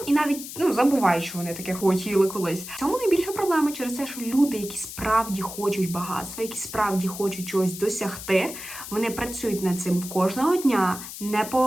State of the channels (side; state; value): left; noise; hiss, 11 dB below the sound